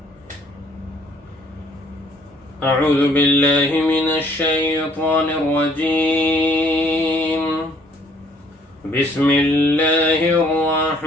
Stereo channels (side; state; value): both; normal; correlation 0.62